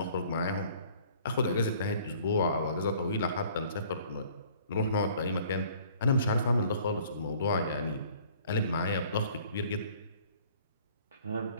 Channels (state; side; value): inverted; both; correlation -0.54